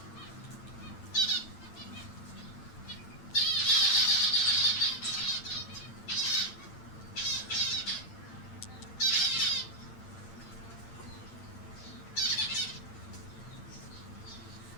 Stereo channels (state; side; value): late; right; 8.9 ms